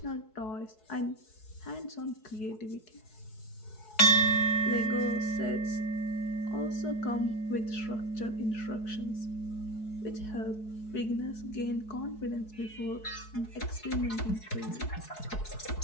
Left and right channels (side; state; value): right; late; 4.7 ms